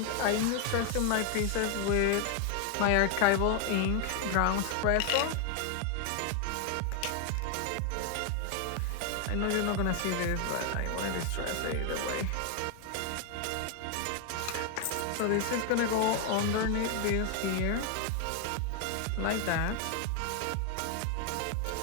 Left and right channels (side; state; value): both; different; correlation 0.01